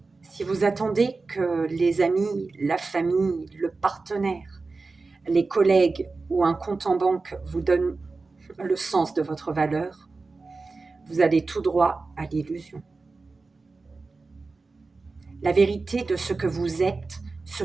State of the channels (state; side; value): quieter; left; 3.9 dB